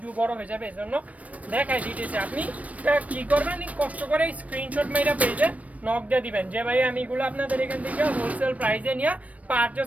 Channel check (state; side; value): late; left; 0.068 ms